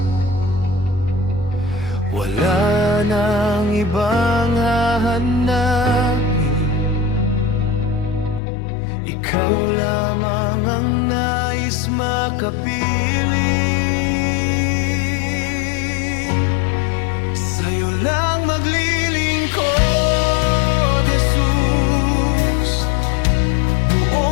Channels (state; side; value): drops out; right; at 8.4 s